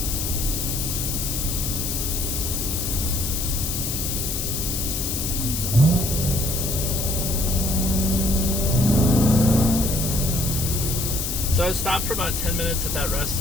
So I stopped for about 10 minutes at that rest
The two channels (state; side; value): noise; left; hiss, 2 dB below the sound